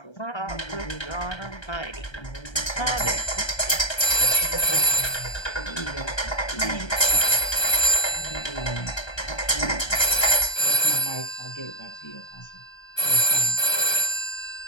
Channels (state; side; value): late; right; 1.3 ms